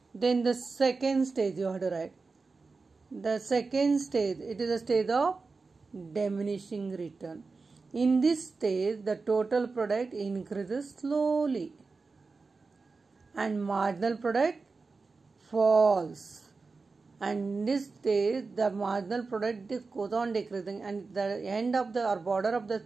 Then the second stage you have to write. The second stage, it is a stage of diminishing return. In this stage, the total product increases slowly and marginal product falls. And in this stage, the marginal product goes on decreasing, and the end of the or border of the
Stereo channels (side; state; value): left; quieter; 4.2 dB